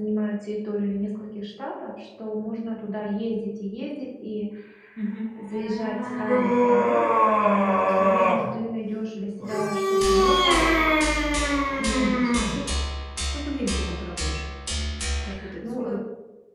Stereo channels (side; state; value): both; identical; correlation 1.00